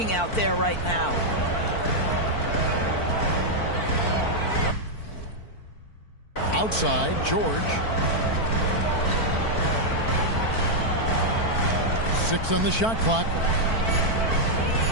out there right now. Outside, George. 6 on the shot clock.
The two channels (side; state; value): right; late; 4.5 ms